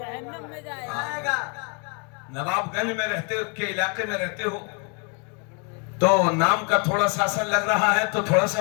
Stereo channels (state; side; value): quieter; right; 36.4 dB